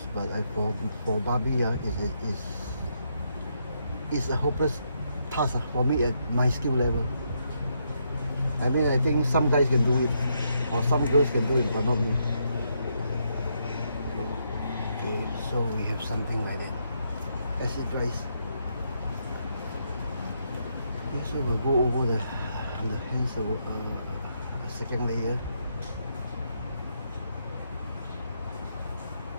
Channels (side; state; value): both; inverted; correlation -0.78